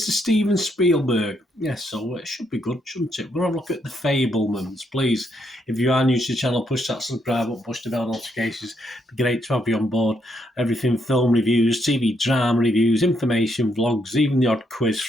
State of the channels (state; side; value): normal; both; correlation 0.76